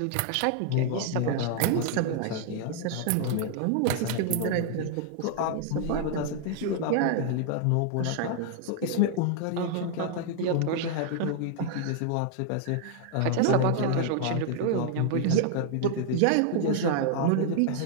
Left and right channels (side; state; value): both; different; correlation 0.00